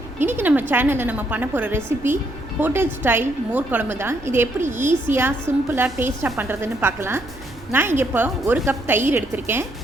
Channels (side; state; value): right; noise; rumble, 19 dB below the sound